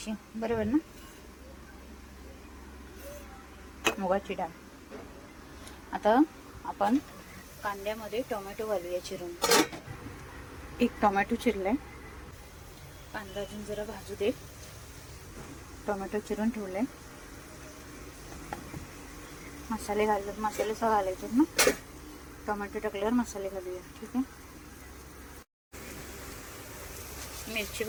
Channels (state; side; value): identical; both; correlation 1.00